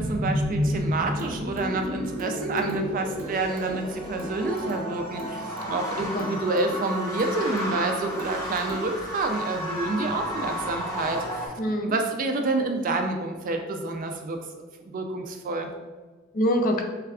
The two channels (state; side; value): normal; both; correlation 0.34